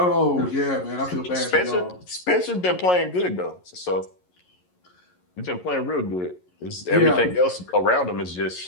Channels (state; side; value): late; right; 11 ms